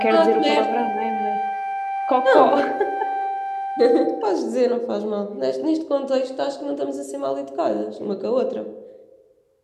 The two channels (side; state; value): both; identical; correlation 1.00